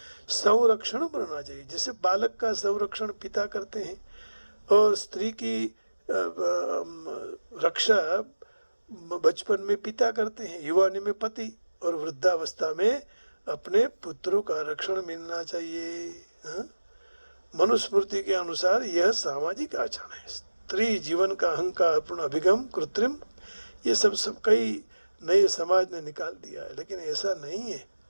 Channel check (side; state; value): both; inverted; correlation -1.00